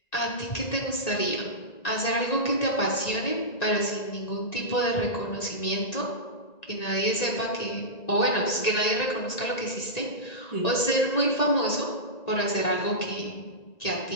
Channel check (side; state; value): right; late; 1.9 ms